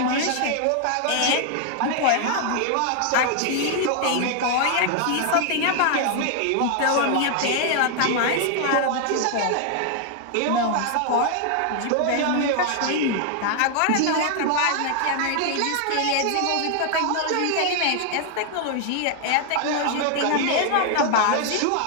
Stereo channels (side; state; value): both; different; correlation 0.00